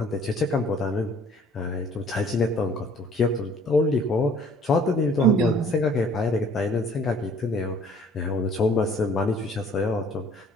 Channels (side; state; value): both; normal; correlation 0.54